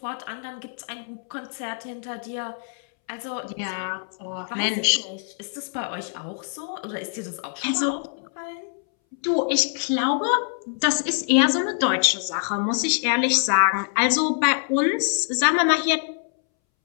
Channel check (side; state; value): right; silent; 62 dB below the other